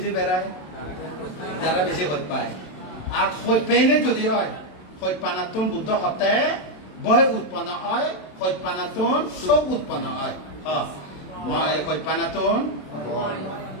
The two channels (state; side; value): late; right; 27 ms